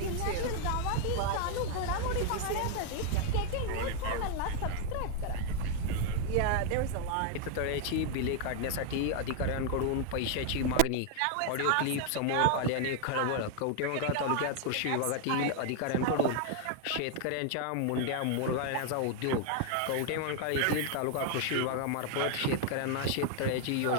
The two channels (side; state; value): both; different; correlation 0.00